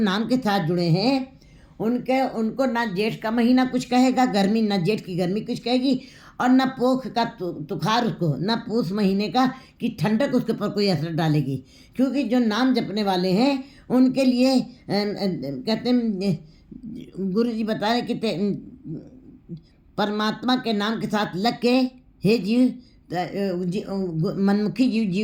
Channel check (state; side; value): identical; both; correlation 1.00